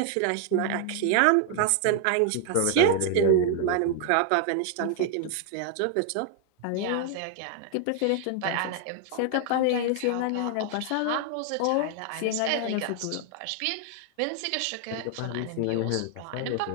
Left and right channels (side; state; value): both; different; correlation 0.00